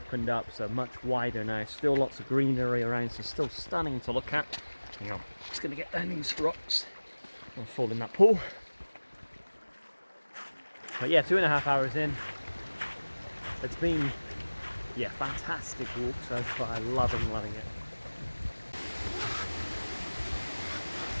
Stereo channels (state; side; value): inverted; both; correlation -1.00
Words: up, so much wider now. Still lots of greenery around, so still stunning to look at. Hang on, just gonna get down these rocks. I'll fall in that pool. But 2.5 hours in. It's been fantastic walk so far. Loving it.